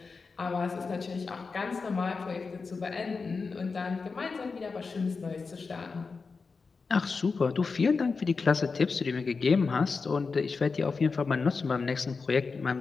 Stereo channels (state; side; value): quieter; right; 4.6 dB